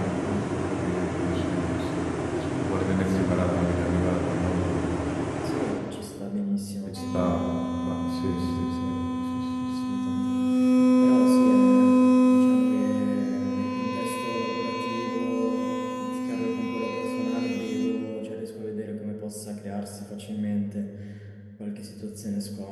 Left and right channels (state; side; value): identical; both; correlation 1.00